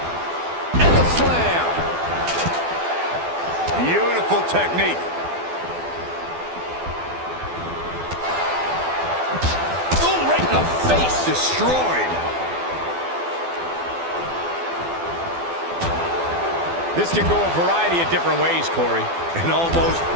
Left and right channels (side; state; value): left; late; 12 ms